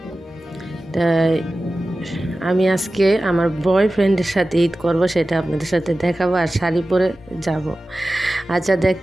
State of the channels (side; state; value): both; normal; correlation 0.95